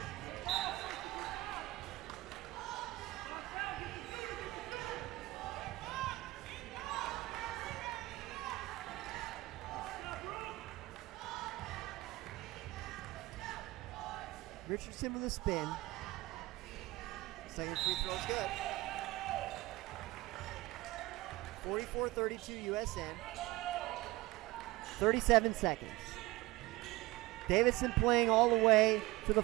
Richardson with a spin. Second free throw is good. 44-32 USN. 37 seconds. Davidson playing all the way to the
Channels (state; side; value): quieter; left; 20.0 dB